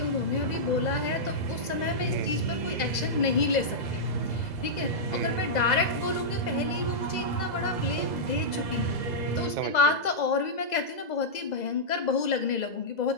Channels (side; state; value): right; late; 2.0 ms